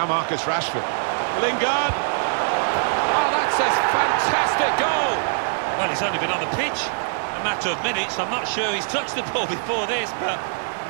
Marcus Rashford. Lingard. Oh, that's a fantastic goal. Well, he's only been on the pitch a matter of minutes. I'm not sure he's touched the ball before this, but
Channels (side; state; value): left; silent; digital silence